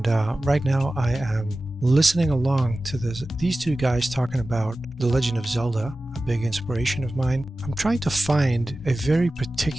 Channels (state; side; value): normal; both; correlation 0.95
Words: right now I am listening along to these two guys talking about The Legend of Zelda, a big inspiration of mine. I'm trying to find a very